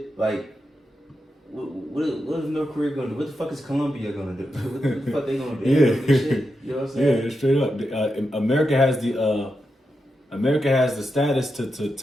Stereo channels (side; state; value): both; normal; correlation 0.87